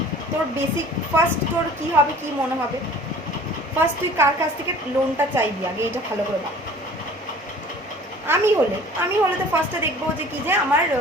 তোর বেসিক ফার্স্ট তোর কী হবে, কী মনে হবে? ফার্স্ট তুই কার কাছ থেকে লোনটা চাইবি আগে, এটা ভালো করে ভাব। আমি হলে তো ফার্স্টে দেখবো যে কি যে আমার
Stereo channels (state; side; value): normal; both; correlation 0.47